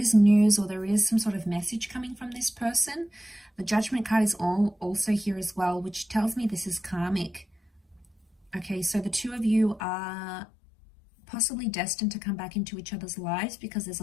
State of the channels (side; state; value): right; drops out; at 9.8 s